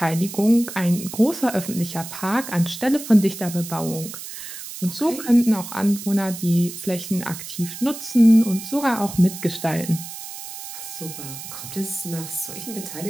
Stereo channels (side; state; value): right; noise; hiss, 11 dB below the sound